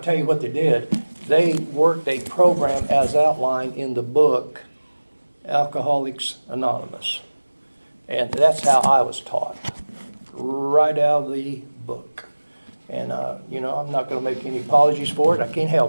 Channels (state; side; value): inverted; both; correlation -1.00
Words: tell you what they did. They worked a program as outlined in the book, Alcoholics Anonymous. And that's how I was taught, right out of the book. And, I'm not going to make any apologies for it. I can't